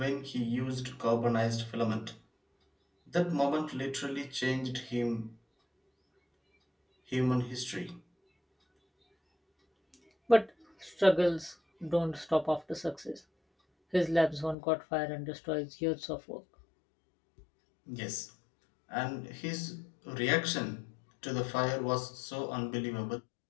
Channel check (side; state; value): right; drops out; at 14.6 s